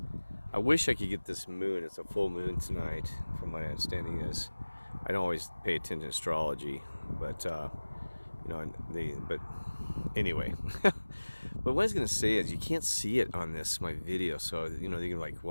I wish I could get this moon. It's a full moon tonight, from my understanding is. I don't always pay attention to astrology, but but anyway. But what I was gonna say is you can't see it on my video, so you're like,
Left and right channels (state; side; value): inverted; both; correlation -1.00